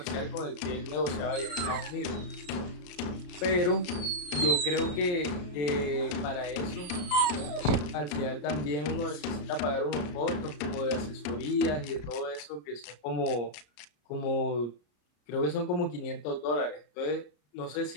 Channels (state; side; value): late; right; 34 ms